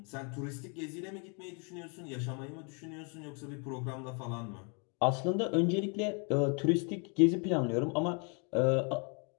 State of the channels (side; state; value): right; quieter; 36.7 dB